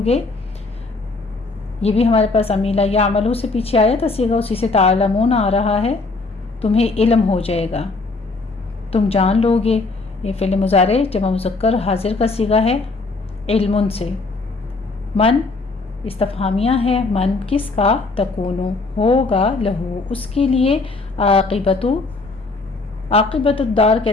گے، یہ بھی ہمارے پاس امیلا یا عملو سے پیچھے آیا تھا صیغہ، اسی سے تعلمون آ رہا ہے، تمہیں علم ہو جائے گا، تم جان لو گے، یہ فعل مضارع جمع مذکر حاضر کا صیغہ ہے، علم سے۔ من استفہامیہ ہے، من کس کا، تکونو ہوگا، لہو اس کے لیے، عاقبت الدار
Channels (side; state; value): right; quieter; 3.6 dB